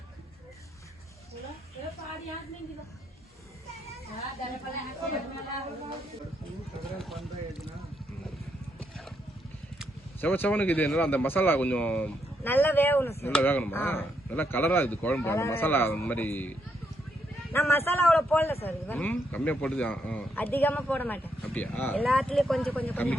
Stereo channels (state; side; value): normal; both; correlation 0.77